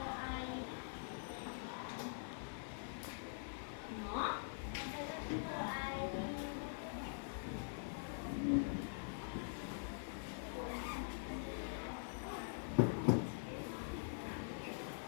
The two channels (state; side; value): silent; right; digital silence